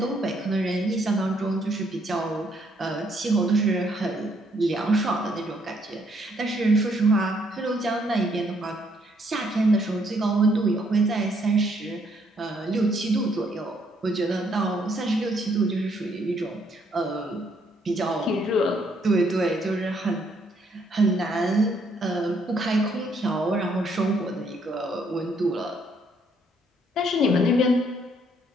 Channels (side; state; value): both; normal; correlation 0.70